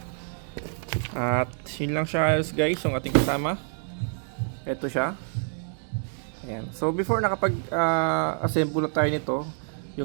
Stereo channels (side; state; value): left; silent; 58 dB below the other